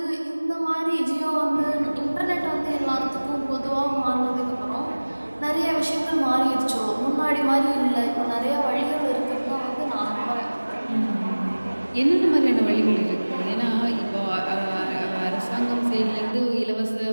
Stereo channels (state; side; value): inverted; both; correlation -1.00